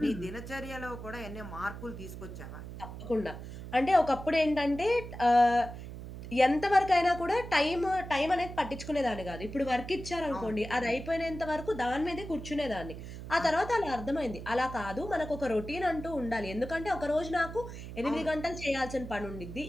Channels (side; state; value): right; noise; hum, 10 dB below the sound